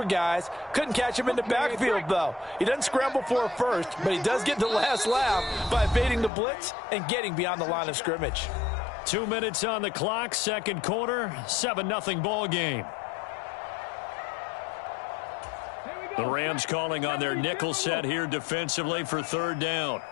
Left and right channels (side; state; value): right; drops out; at 6.3 s